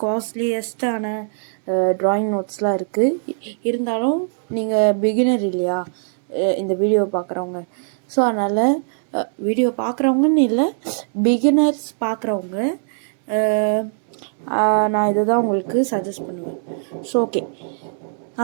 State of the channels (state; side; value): silent; left; digital silence